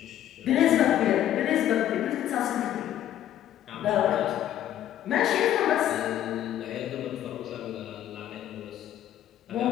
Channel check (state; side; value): quieter; right; 11.7 dB